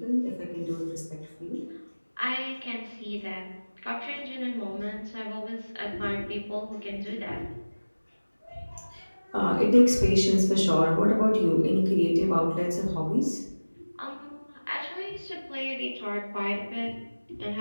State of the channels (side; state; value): both; inverted; correlation -1.00